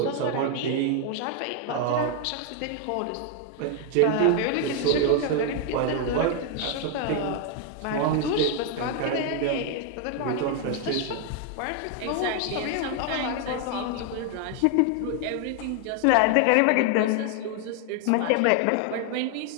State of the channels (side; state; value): both; different; correlation 0.01